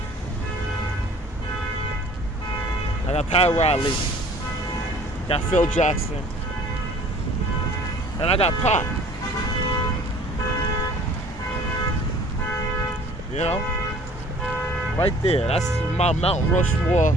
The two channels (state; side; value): normal; both; correlation 0.51